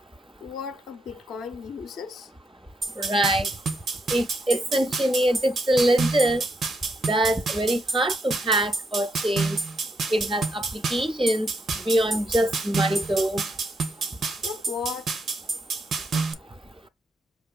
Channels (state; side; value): normal; both; correlation 0.78